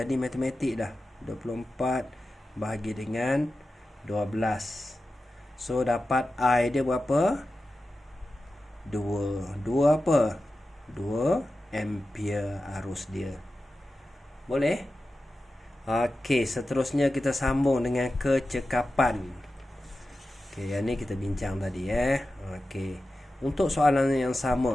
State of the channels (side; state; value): both; normal; correlation 0.93